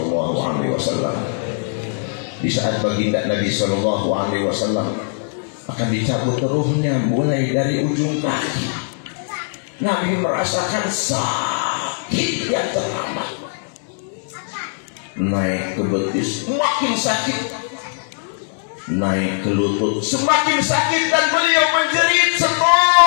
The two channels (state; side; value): silent; right; digital silence